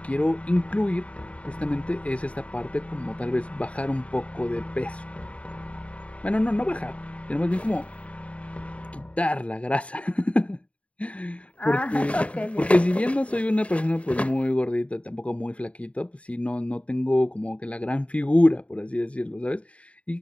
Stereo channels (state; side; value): late; right; 0.064 ms